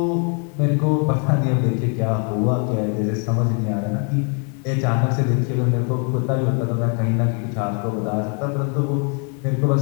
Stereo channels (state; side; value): quieter; right; 39.8 dB